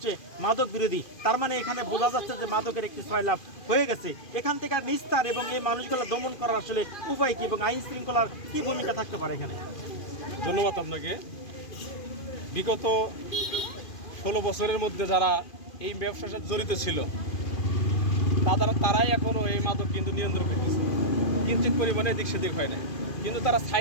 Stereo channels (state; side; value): late; right; 2.4 ms